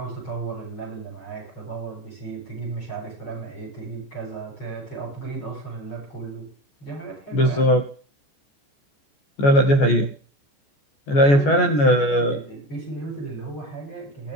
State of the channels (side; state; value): right; late; 14 ms